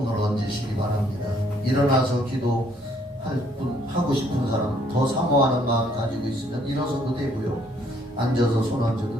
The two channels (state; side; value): normal; both; correlation 0.65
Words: 얹으시기 바랍니다. 일어나서 하고 싶은 사람, 더 사모하는 마음 가지고 있으면 일어서도 되고요, 앉아서 손